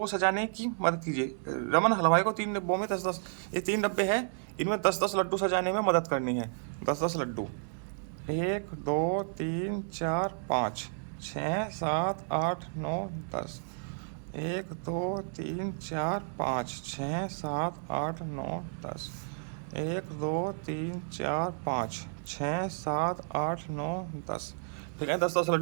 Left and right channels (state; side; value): silent; left; digital silence